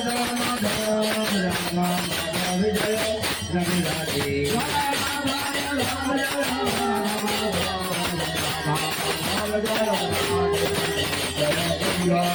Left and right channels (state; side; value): noise; left; rumble, 27 dB below the sound